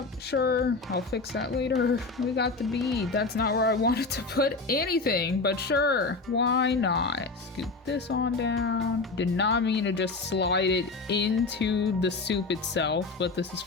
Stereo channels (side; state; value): right; quieter; 3.8 dB